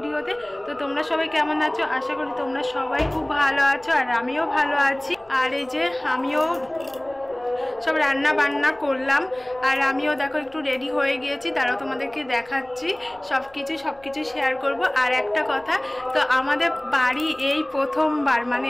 তো তোমরা সবাই কেমন আছো? আশা করি তোমরা সবাই খুব ভালো আছো, আর আমিও ভালো আছি। আর এই যে আমিও সব রান্না বান্না করলাম, আর আমিও দেখো একটু রেডি হয়ে গিয়েছি, তারাও তোমাদেরকে দেখাচ্ছি সব কিছু শেয়ার করব। আর একটা কথা, তো আমাদের বাড়ি এই প্রথমবার, মানে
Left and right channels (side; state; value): left; noise; rumble, 28 dB below the sound